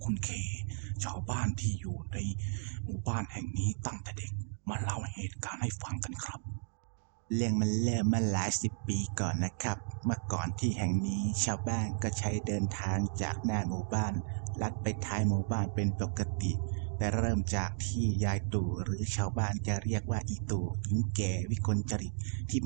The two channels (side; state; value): left; silent; digital silence